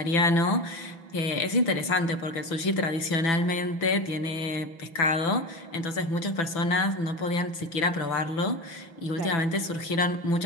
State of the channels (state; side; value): late; right; 6.0 ms